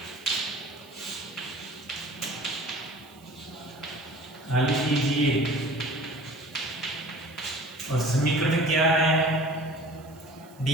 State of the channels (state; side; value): noise; right; hiss, 26 dB below the sound